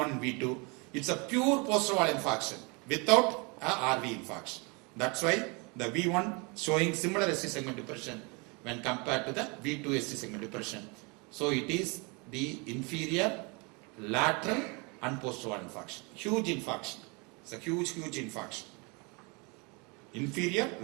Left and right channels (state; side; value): quieter; left; 30.3 dB